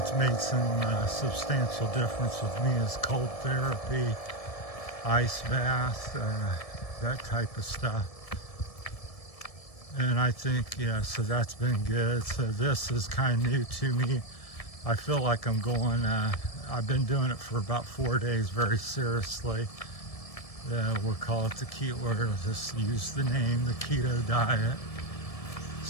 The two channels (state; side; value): late; right; 1.7 ms